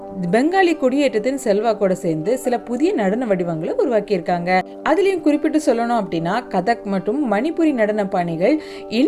பெங்காலி குடியேற்றத்தின் செல்வாக்கோட சேர்ந்து சில புதிய நடன வடிவங்களை உருவாக்கியிருக்காங்க. அதுலயும் குறிப்பிட்டு சொல்லணும் அப்படின்னா கதக் மற்றும் மணிப்புரி நடன பாணிகள்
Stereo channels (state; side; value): identical; both; correlation 1.00